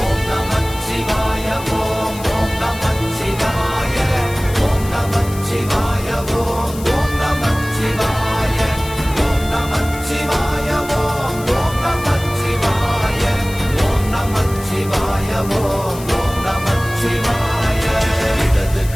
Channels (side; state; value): left; noise; hiss, 15 dB below the sound